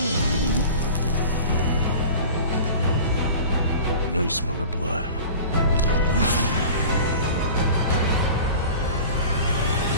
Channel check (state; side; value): inverted; both; correlation -0.38